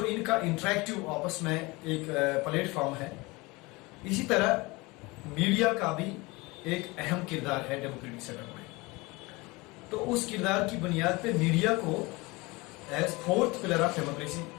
इनका इंटरेक्टिव आपस में एक प्लेटफॉर्म है, इसी तरह मीडिया का भी एक अहम किरदार है डेमोक्रेटिक सेटअप में। तो उस किरदार की बुनियाद पे मीडिया को as fourth pillar of democracy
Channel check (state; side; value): quieter; right; 23.9 dB